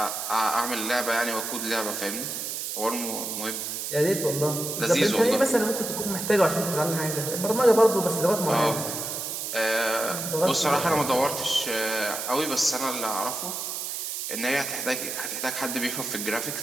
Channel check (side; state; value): right; noise; hiss, 4 dB below the sound